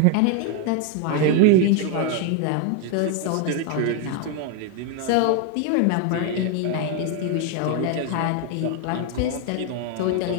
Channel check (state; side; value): different; both; correlation 0.01